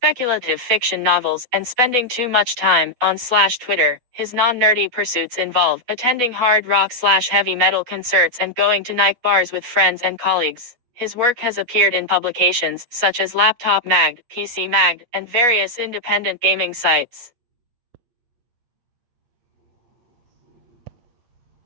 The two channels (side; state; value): left; late; 8.2 ms